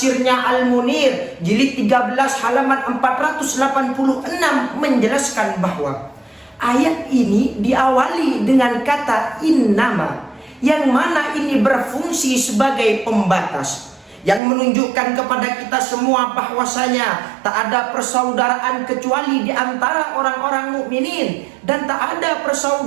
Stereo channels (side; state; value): left; drops out; at 14.4 s